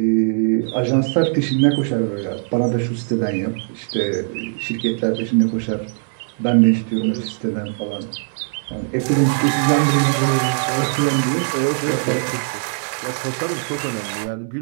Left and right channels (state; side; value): silent; left; 65 dB below the other